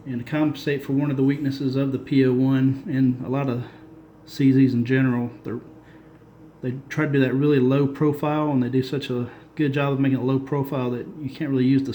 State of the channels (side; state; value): both; identical; correlation 1.00